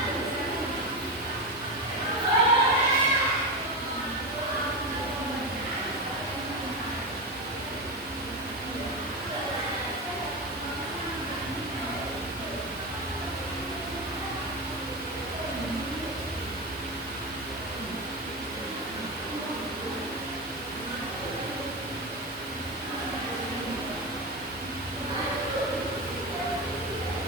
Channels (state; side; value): normal; both; correlation 0.17